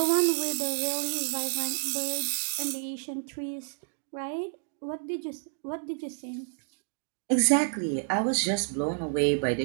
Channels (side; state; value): left; silent; 58 dB below the other